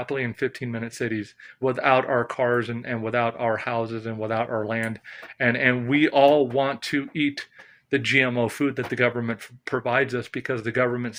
in 15-minute cities without our cars and without our houses and without our land. And we all want to eat the GMO food that the government provides us because the government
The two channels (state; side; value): identical; both; correlation 1.00